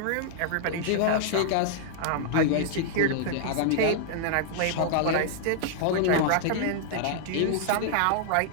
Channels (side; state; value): both; different; correlation -0.01